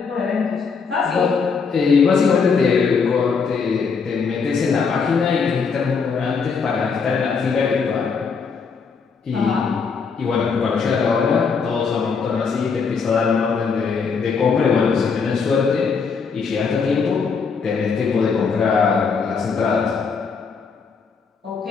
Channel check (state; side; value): quieter; right; 5.5 dB